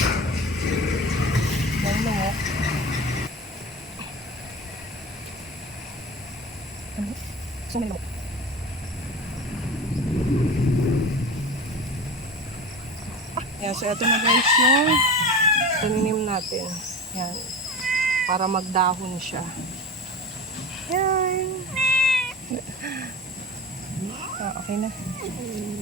Yan, so ito na guys yung taninim natin. Yan. Para magdahon siya. Yan. Okay na.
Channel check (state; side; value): normal; both; correlation 0.33